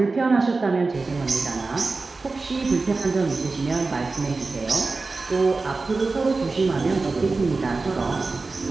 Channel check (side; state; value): left; quieter; 3.8 dB